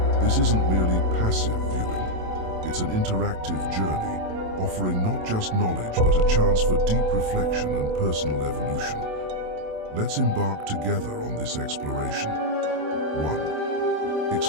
This isn't merely passive viewing. It's an interactive journey, offering not just knowledge but a chance for deep reflection and personal evolution. Let's embark together on this exploration. 1.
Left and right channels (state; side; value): late; left; 27 ms